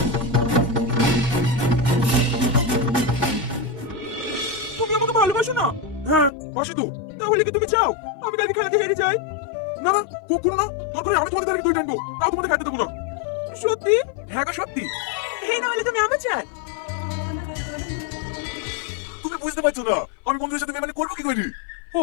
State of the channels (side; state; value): right; drops out; at 6.3 s